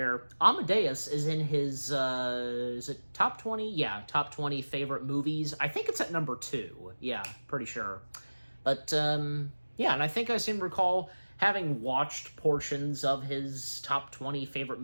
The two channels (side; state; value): both; inverted; correlation -1.00